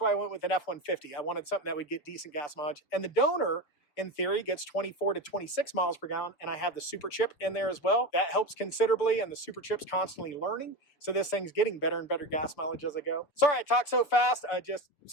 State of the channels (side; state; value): right; late; 6.9 ms